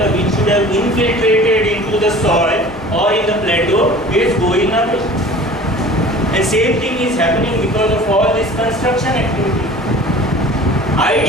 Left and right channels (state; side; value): normal; both; correlation 0.43